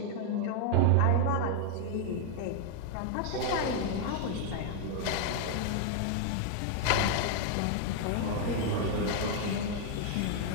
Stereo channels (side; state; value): both; different; correlation 0.00